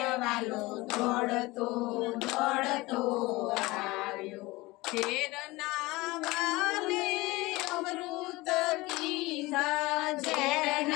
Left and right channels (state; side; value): quieter; right; 21.3 dB